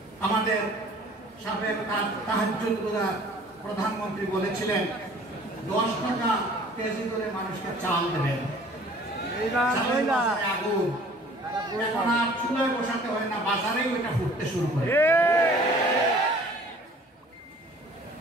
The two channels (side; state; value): both; normal; correlation 0.51